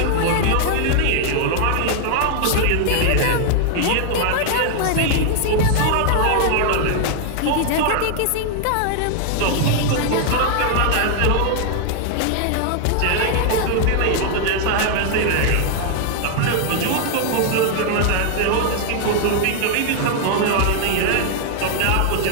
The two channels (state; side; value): different; both; correlation 0.00